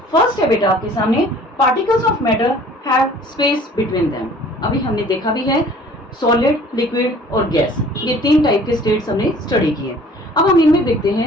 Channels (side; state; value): both; normal; correlation 0.51